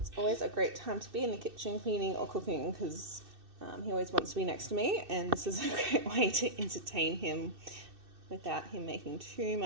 always a great time to be in the kitchen cleaning or cooking because he always wants to be next to me, and this is a great way to entertain him without him making too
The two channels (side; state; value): left; late; 2.6 ms